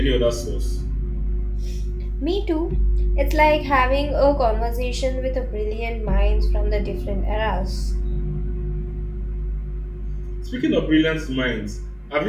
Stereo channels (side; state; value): both; identical; correlation 1.00